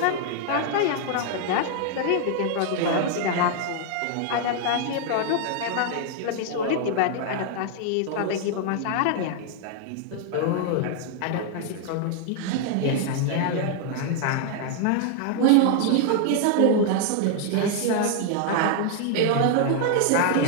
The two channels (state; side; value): different; both; correlation 0.00